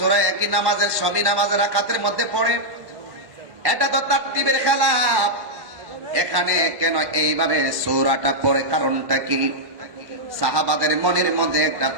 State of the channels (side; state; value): left; late; 1.2 ms